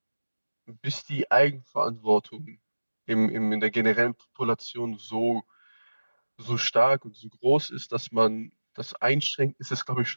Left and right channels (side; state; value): both; inverted; correlation -1.00